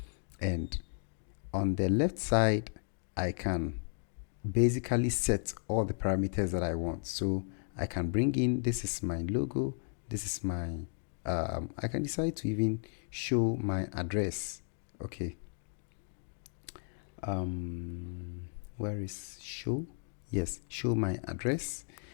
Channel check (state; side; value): silent; right; 55 dB below the other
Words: And on the left side, I can basically set all the parameters that I want. So I can bring in, this is my logo, this is my, I can decide to even show my address. Okay. Where is show? Yes, show my address.